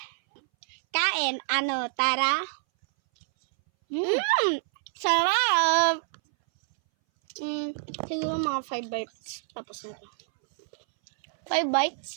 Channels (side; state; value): left; silent; 60 dB below the other